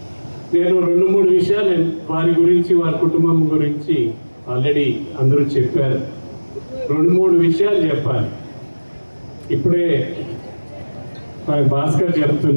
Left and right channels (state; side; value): inverted; both; correlation -1.00